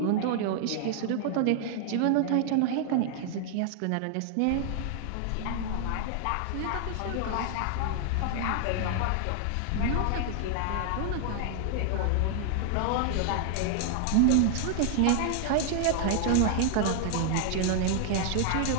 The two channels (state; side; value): different; both; correlation 0.00